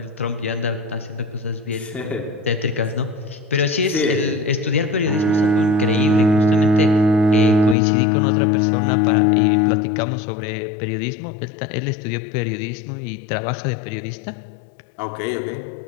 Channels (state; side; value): drops out; right; at 7.8 s